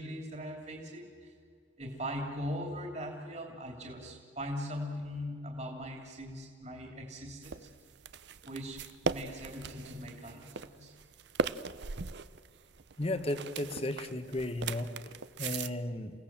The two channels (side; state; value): both; normal; correlation 0.39